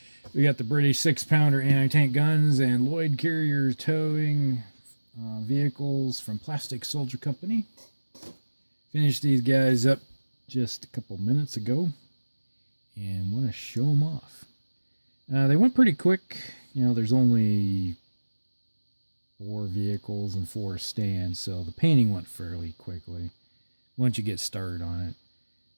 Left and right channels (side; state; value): both; inverted; correlation -1.00